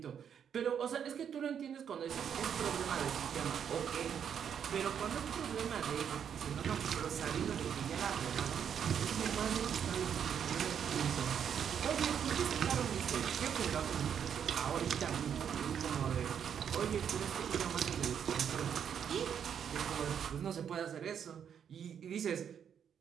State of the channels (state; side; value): quieter; left; 8.2 dB